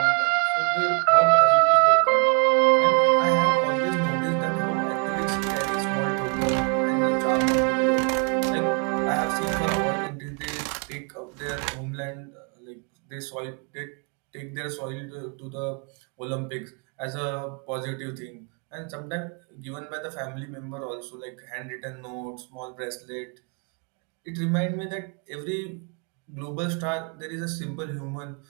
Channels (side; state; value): left; quieter; 37.2 dB